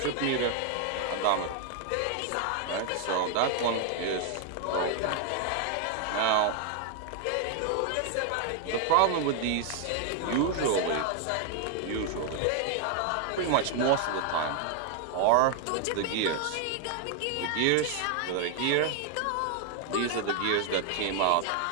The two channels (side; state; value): both; different; correlation 0.00